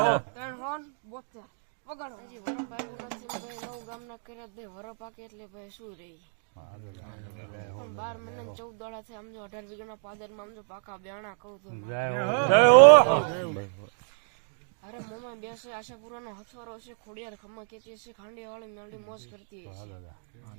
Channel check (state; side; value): silent; left; digital silence